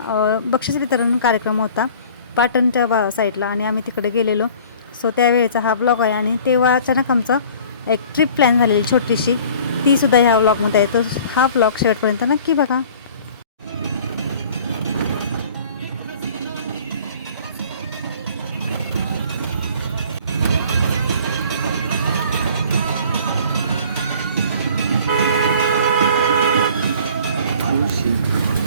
बक्षीस वितरण कार्यक्रम होता पाटणच्या साईडला आणि आम्ही तिकडे गेलेलो. सो त्यावेळेचा हा व्लॉग आहे आणि तेव्हा अचानक आमचा एक ट्रिप प्लॅन झालेली छोटीशी, तीसुद्धा ह्या व्लॉगमध्ये आहे. तर हा व्लॉग शेवटपर्यंत नक्की बघा.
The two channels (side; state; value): both; inverted; correlation -0.48